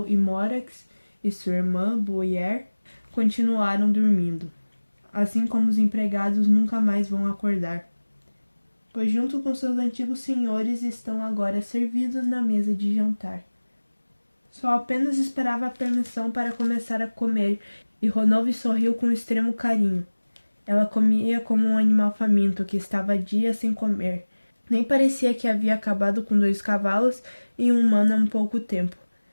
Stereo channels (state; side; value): inverted; both; correlation -1.00